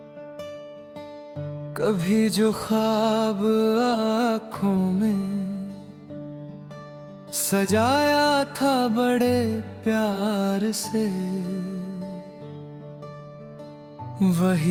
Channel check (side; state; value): both; identical; correlation 1.00